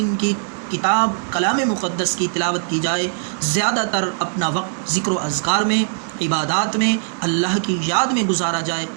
کی کتاب کلام مقدس کی تلاوت کی جائے، زیادہ تر اپنا وقت ذکر و اذکار میں، عبادات میں، اللہ کی یاد میں گزارا جائے۔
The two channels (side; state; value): left; silent; digital silence